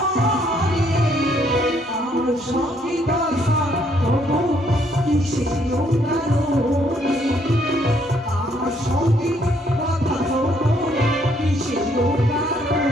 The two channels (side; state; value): both; normal; correlation 0.68